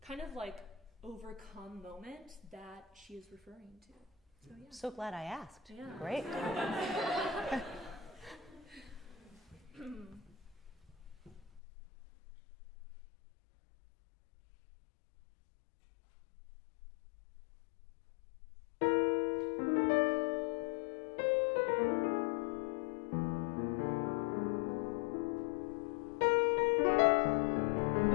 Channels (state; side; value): drops out; right; at 11.6 s